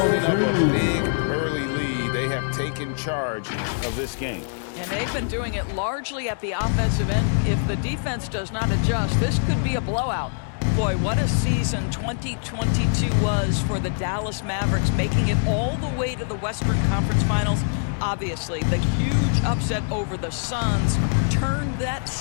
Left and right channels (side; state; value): right; silent; digital silence